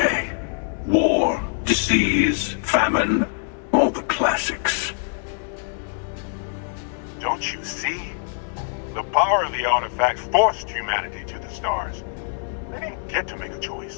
War, disease, famine, all the classics. Don't you see? The power of the artifacts forced humanity to the stars. They didn't get to make a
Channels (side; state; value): right; silent; digital silence